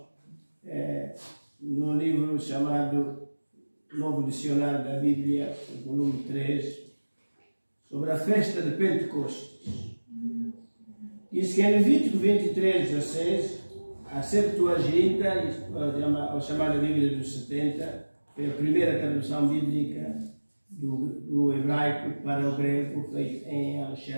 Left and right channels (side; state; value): both; inverted; correlation -1.00